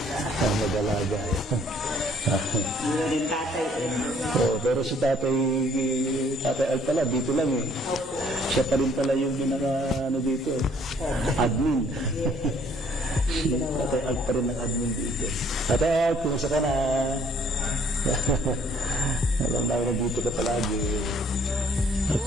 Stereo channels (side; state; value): both; normal; correlation 0.61